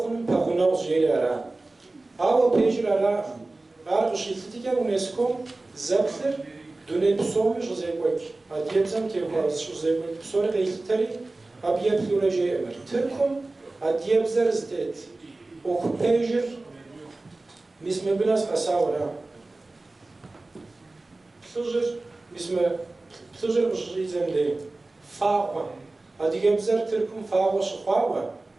paguna uzeylara ava pejrara arşilti ke UNESCO zepler dönem soğumuş zeybek adiyebzem ke var şu zeybek sonra değilteri Abiyet florajı emir. Türk'üm adiyebzer zdet. Okupejir misme biraz asavra. Psujir ujizemde. Fağva. Adiyebzer Türk'üm fağva şıfağva.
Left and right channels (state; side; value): quieter; left; 3.1 dB